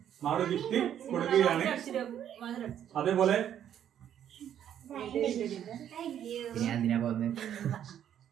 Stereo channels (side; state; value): left; quieter; 10.0 dB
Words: മാളു ഗിഫ്റ്റ് കൊടുക്കുകയാണ്. അതേപോലെ